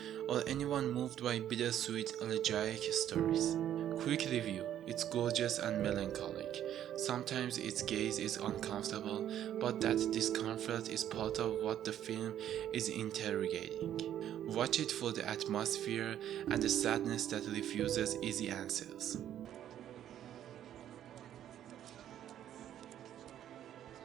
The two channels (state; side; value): quieter; left; 11.0 dB